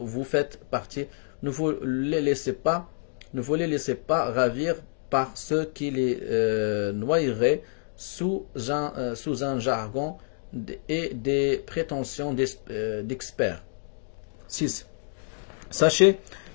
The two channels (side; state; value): right; silent; digital silence